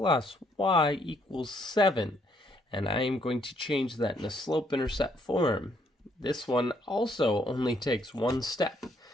y equals 7. And I am going to change that in a slope-intercept form. This one also only takes one step.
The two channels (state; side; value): normal; both; correlation 0.70